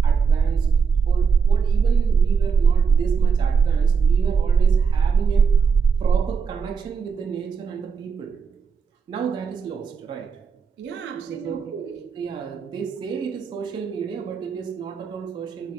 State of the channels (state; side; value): quieter; left; 5.9 dB